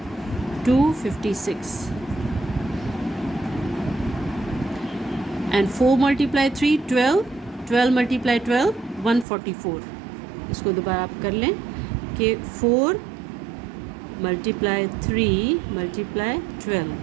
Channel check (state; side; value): drops out; left; at 9.2 s